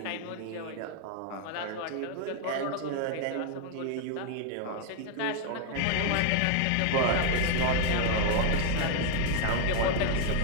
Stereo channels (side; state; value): both; different; correlation 0.01